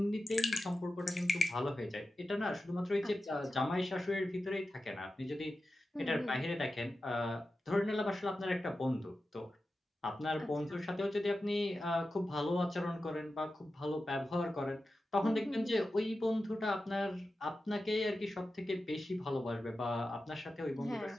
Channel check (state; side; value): normal; both; correlation 0.92